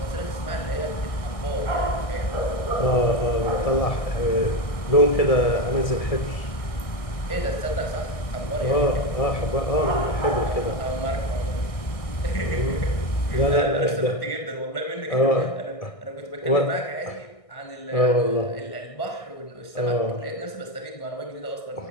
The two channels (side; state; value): right; late; 1.6 ms